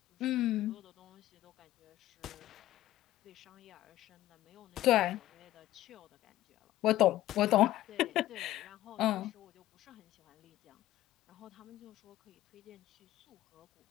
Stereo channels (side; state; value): right; quieter; 14.8 dB